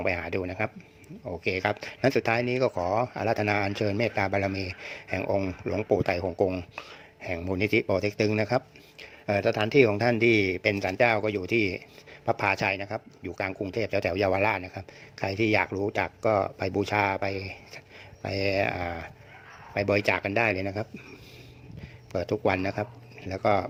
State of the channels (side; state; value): both; identical; correlation 1.00